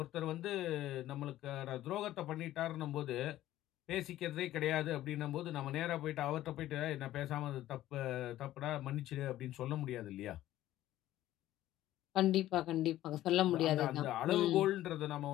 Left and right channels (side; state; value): right; quieter; 14.2 dB